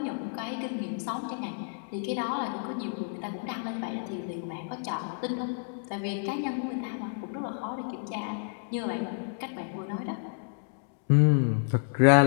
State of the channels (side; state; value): right; silent; digital silence